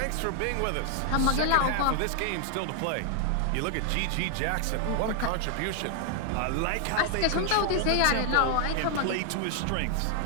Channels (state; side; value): different; both; correlation 0.00